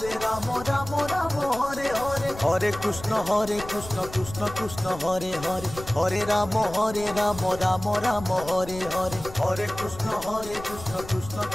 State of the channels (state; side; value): noise; left; rumble, 14 dB below the sound